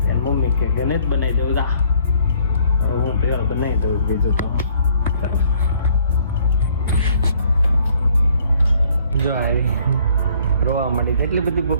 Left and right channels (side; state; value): both; inverted; correlation -0.61